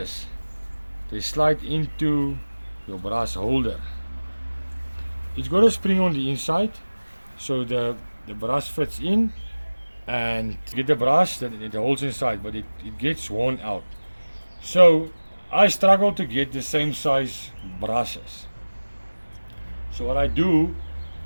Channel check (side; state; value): both; inverted; correlation -1.00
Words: they slide into your brush holder. It's got a spring on the inside, so the brush fits in, and you get the brush that it holds inside, but it gets worn out. So I struggle to get the same size brushes. So what I do,